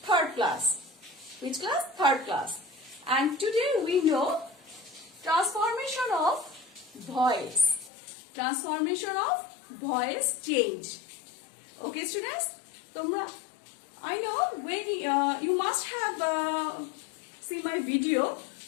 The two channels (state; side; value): drops out; right; at 7.9 s